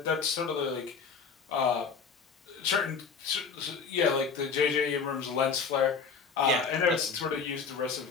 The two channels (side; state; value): right; quieter; 5.5 dB